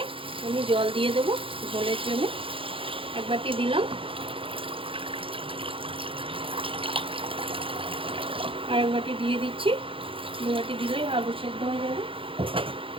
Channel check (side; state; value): left; late; 0.26 ms